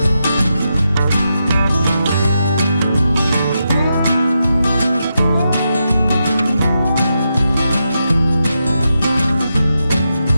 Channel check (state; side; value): inverted; both; correlation -0.86